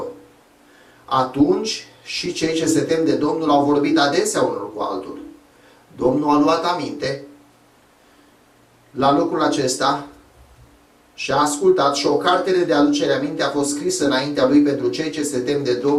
Atunci și cei ce se tem de Domnul au vorbit adesea unul cu altul. Domnul a luat aminte la lucrul acesta și a ascultat și o cartere de aducere aminte a fost scrisă înaintea lui pentru cei ce se tem de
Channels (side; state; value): both; identical; correlation 1.00